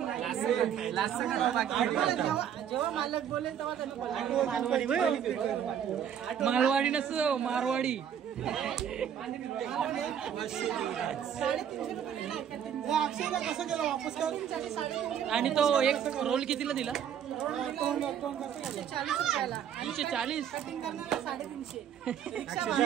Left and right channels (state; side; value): quieter; left; 9.0 dB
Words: जेव्हा मालक बोलेल तेव्हा मालवाडी नसतो मारवाडी. कसं केलं वापस कर. आणि तो एक रोल कितीला दिला. 340.